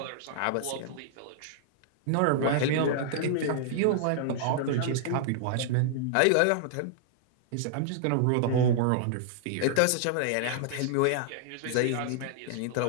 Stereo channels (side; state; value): both; different; correlation -0.01